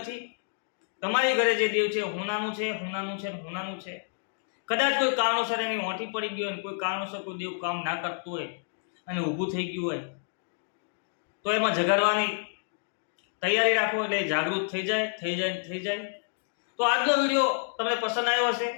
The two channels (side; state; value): right; silent; digital silence